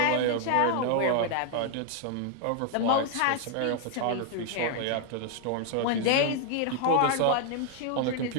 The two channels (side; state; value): both; different; correlation 0.00